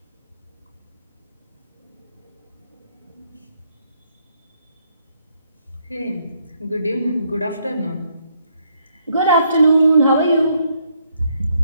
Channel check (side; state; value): both; inverted; correlation -0.72